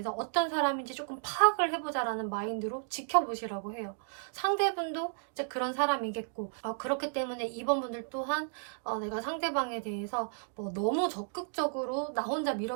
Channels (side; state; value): left; silent; digital silence